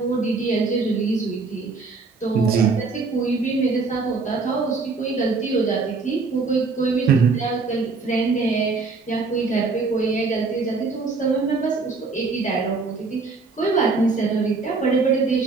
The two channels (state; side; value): quieter; left; 4.2 dB